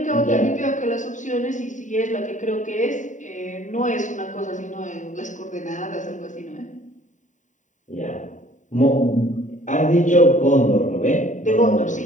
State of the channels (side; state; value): right; late; 0.36 ms